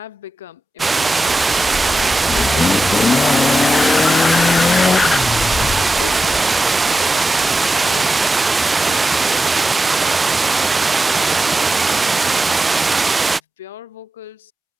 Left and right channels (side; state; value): both; normal; correlation 0.91